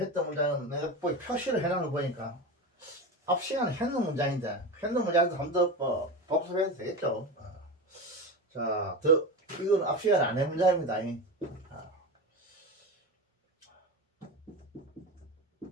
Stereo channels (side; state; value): both; normal; correlation 0.23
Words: 문장은 내가 표시를 해놓은 거 보니까 앞 시간에 했는 문장인데 했는 문장도 한 번 더 복습해도 되겠죠. 자, 이건 앞 시간에 안 한 문장입니다.